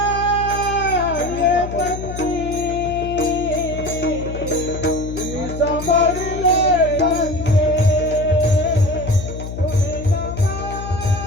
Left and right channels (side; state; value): left; noise; hum, 8 dB below the sound